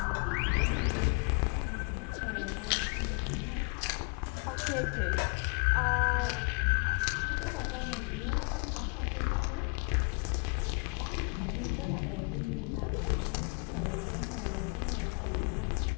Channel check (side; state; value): right; quieter; 34.1 dB